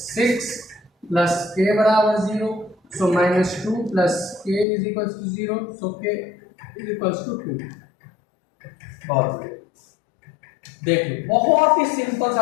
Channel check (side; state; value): right; drops out; at 4.7 s